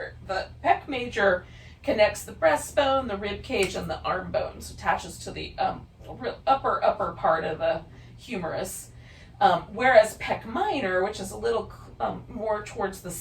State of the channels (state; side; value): identical; both; correlation 1.00